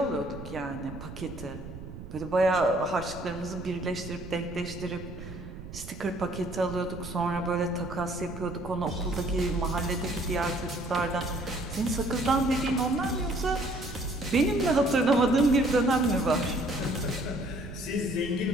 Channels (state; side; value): noise; right; rumble, 12 dB below the sound